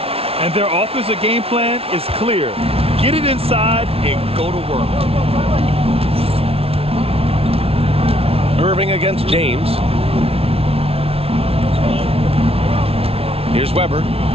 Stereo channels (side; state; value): left; late; 0.28 ms